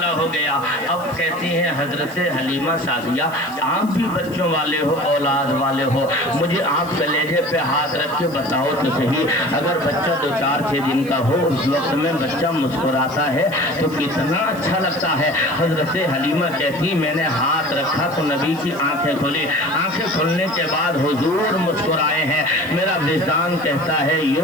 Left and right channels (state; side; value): noise; left; hiss, 21 dB below the sound